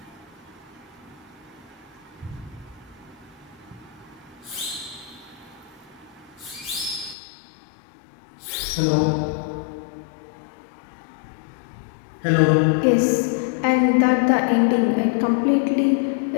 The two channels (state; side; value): drops out; right; at 7.2 s